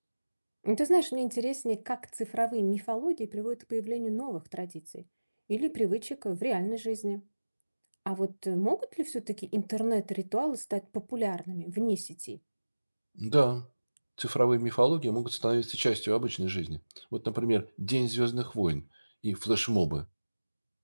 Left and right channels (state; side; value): inverted; both; correlation -1.00